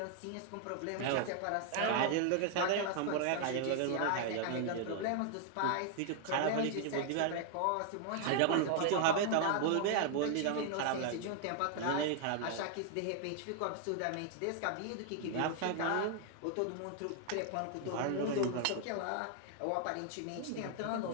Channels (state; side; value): different; both; correlation 0.00